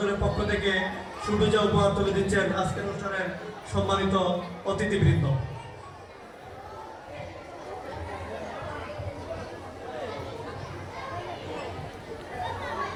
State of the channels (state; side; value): identical; both; correlation 1.00